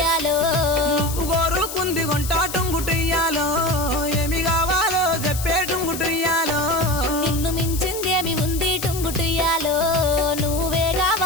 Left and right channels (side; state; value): left; noise; hiss, 9 dB below the sound